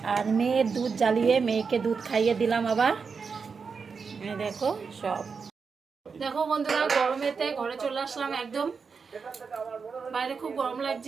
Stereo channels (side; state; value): left; quieter; 5.4 dB